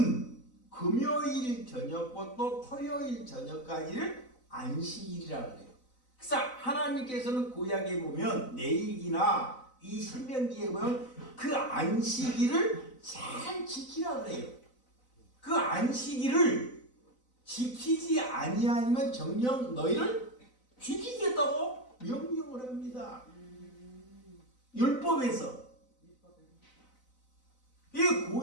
금요일 저녁부터 토요일 저녁까지를 안식일이라고 그래요. 그래서 하나님께서는 구약에 보면 레위기나 이 신명기에 보면 그 안식일을 잘 지키라고 그래요. 그 안식일을 지키지 아니하면 정녕 너희를 죽이겠다고 명령을 합니다. 율법에서. 이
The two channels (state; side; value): late; right; 4.0 ms